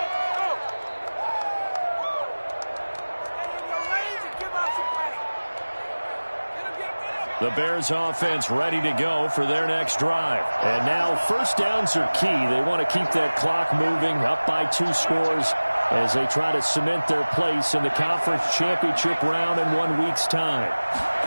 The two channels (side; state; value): both; inverted; correlation -1.00